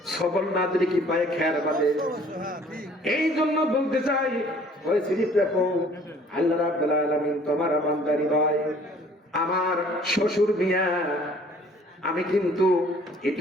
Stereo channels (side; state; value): both; normal; correlation 0.55